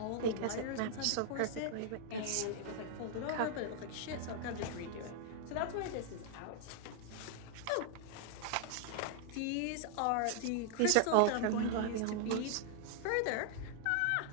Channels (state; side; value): different; both; correlation 0.00